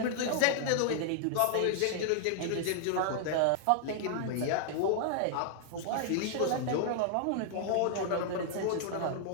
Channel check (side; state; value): both; different; correlation -0.01